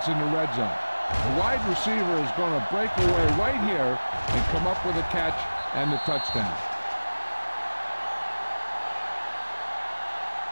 in the red zone. The wide receiver is going to break away right here and come up with a catch and the touchdown.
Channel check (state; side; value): inverted; both; correlation -1.00